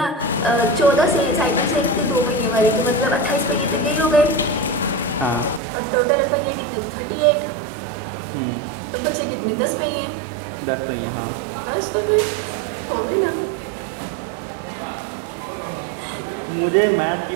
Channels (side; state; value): left; drops out; at 5.6 s